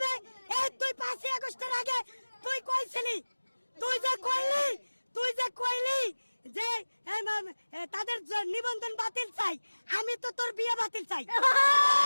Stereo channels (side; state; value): both; inverted; correlation -1.00